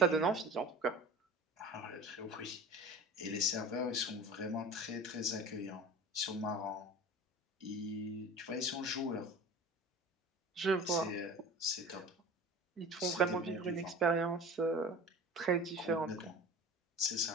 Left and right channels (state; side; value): normal; both; correlation 0.36